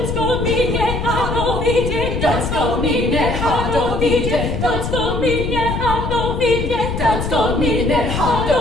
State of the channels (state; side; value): noise; left; rumble, 3 dB below the sound